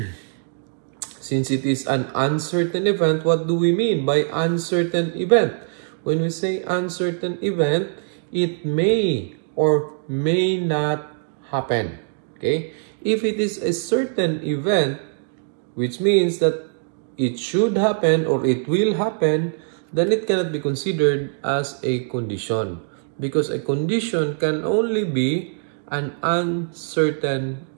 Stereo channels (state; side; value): silent; left; digital silence